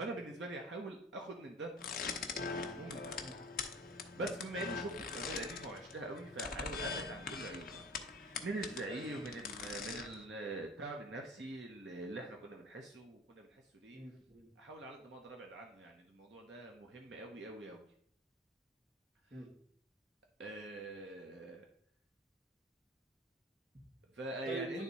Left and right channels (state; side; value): normal; both; correlation 0.41